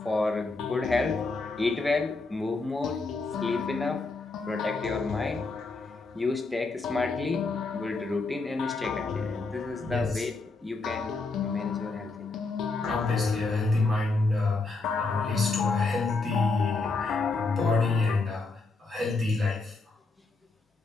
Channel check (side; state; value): right; quieter; 3.7 dB